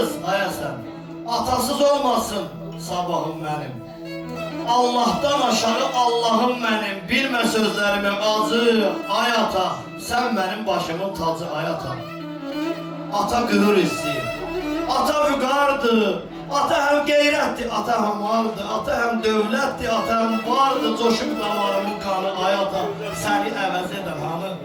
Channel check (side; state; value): both; identical; correlation 1.00